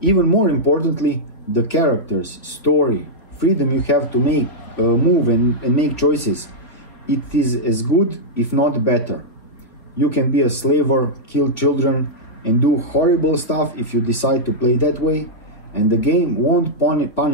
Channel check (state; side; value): late; right; 3.6 ms